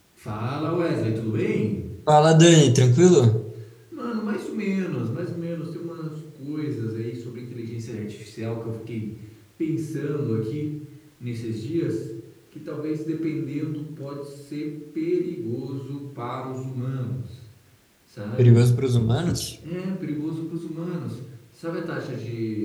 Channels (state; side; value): identical; both; correlation 1.00